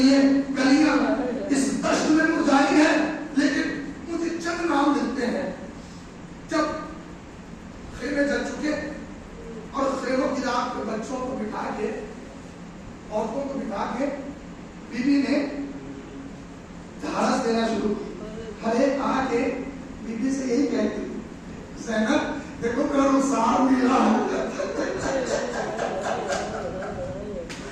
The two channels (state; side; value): identical; both; correlation 1.00